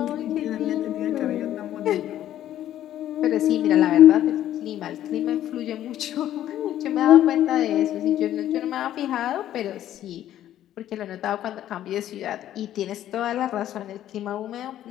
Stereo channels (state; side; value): quieter; right; 12.1 dB